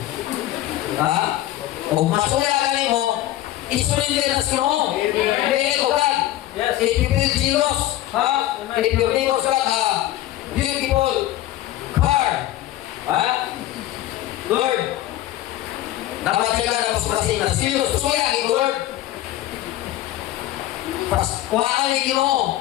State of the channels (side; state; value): right; quieter; 14.4 dB